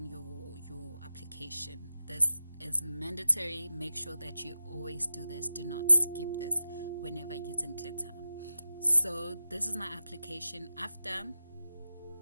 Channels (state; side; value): inverted; both; correlation -0.94